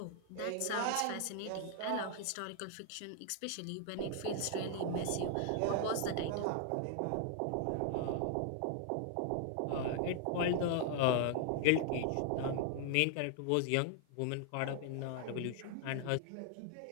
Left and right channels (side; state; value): both; different; correlation 0.00